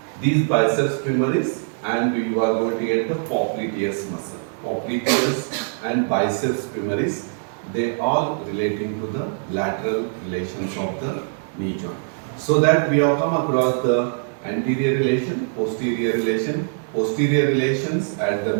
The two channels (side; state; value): left; silent; 62 dB below the other